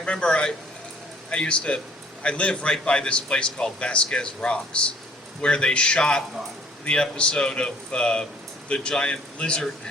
I live right by this place called Vasquez Rocks, where they shot the episode of the giant lizard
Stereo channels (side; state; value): both; normal; correlation 0.57